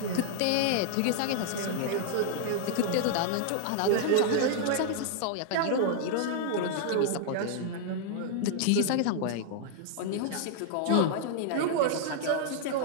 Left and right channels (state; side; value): different; both; correlation 0.00